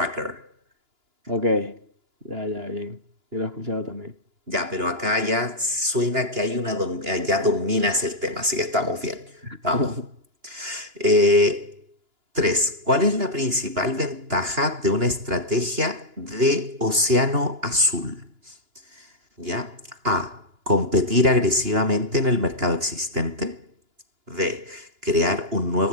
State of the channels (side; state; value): left; late; 2.9 ms